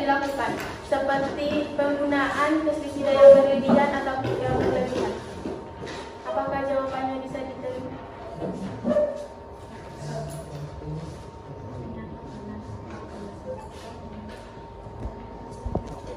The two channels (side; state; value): both; identical; correlation 1.00